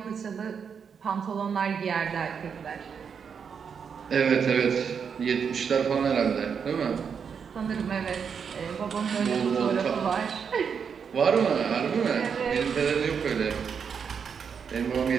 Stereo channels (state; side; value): quieter; left; 6.7 dB